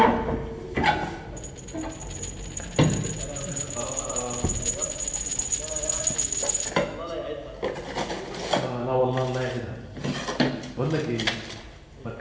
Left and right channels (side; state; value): both; identical; correlation 1.00